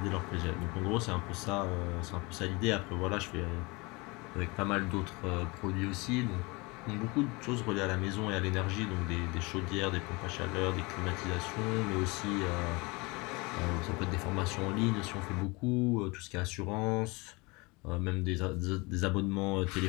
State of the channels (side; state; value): right; quieter; 26.0 dB